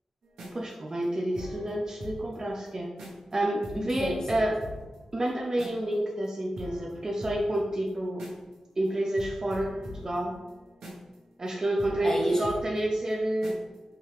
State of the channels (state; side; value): normal; both; correlation 0.93